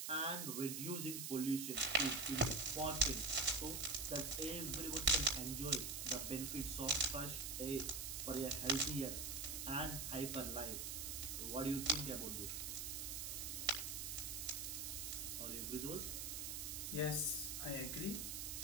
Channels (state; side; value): noise; right; hiss, 3 dB below the sound